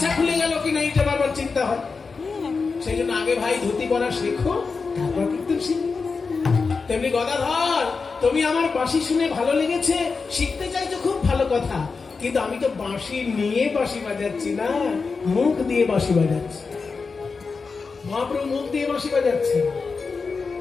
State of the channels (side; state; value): right; quieter; 4.7 dB